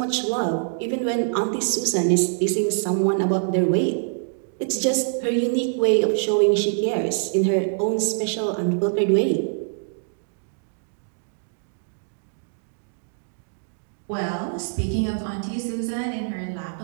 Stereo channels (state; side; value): silent; left; digital silence